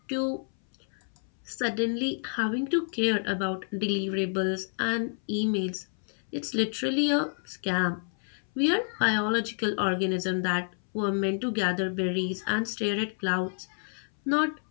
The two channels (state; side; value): silent; right; 58 dB below the other